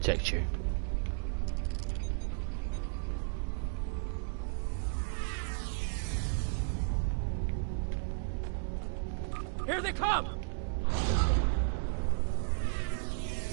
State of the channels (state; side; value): silent; left; digital silence